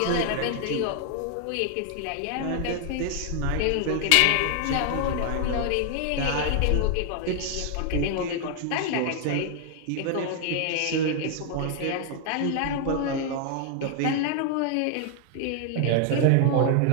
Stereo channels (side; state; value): both; different; correlation 0.00